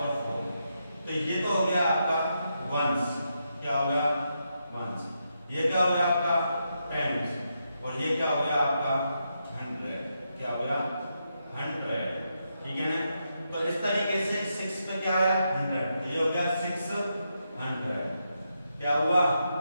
4 तो ये तो हो गया आपका वंस। क्या हो गया वंस। ये क्या हो गया आपका टेंस और ये क्या हो गया आपका 100। क्या हो गया 100। ठीक है ना। तो इस तरीके से 6 पे क्या आया 100 तो ये हो गया 600। क्या हुआ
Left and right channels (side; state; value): both; inverted; correlation -0.83